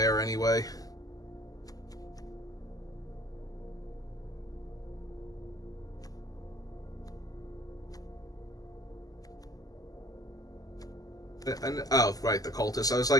anyway. Oh, right, the Cultist. I was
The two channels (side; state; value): right; late; 0.17 ms